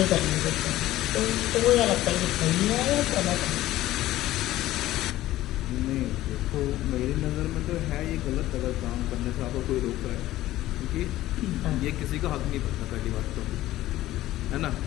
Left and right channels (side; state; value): right; quieter; 15.3 dB